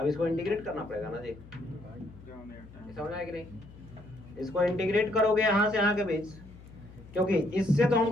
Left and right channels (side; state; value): left; noise; hum, 19 dB below the sound